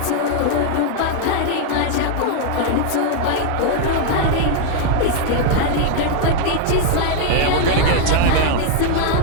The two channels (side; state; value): both; different; correlation 0.00